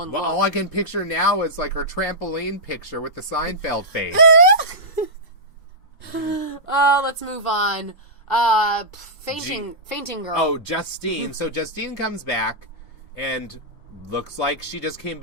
look. All I can picture now is, like, her trampoline picture with the Seinfeld face. Let's move on. Fainting girl. Oh, Justine. So Justine comes back, and... looks like she just came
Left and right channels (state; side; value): normal; both; correlation -0.13